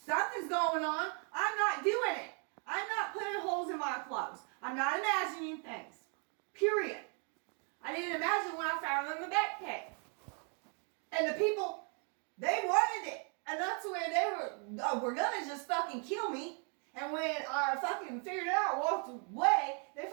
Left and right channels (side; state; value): left; quieter; 40.0 dB